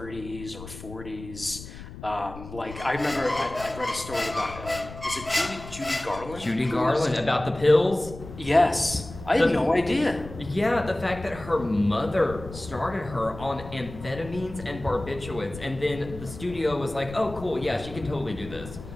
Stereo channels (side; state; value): left; noise; rumble, 13 dB below the sound